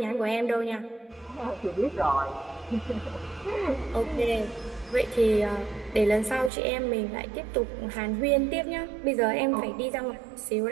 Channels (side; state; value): left; drops out; at 6.5 s